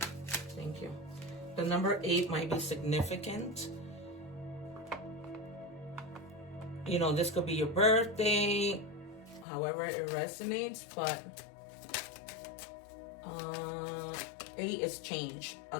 Thank you. The number 8 might be significant. You know, this could be your birthday, however it resonates, but 8 is change,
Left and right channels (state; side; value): drops out; right; at 9.5 s